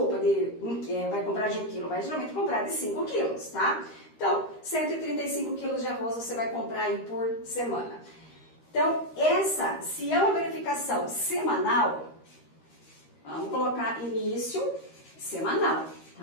vai comprar de 1 quilo, vai geralmente comprar de 5 quilos, tá? Então, 135 quilos de arroz você vai comprar aí por semana. Então, se é uma verificação semanal, vamos colocar início semanal,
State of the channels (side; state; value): right; late; 13 ms